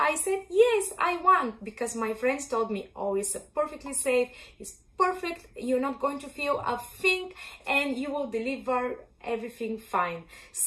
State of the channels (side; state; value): both; identical; correlation 1.00